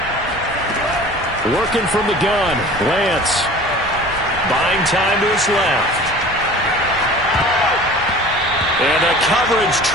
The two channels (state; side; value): normal; both; correlation 0.43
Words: Working from the gun, Lance. Buying time to his left. And the coverage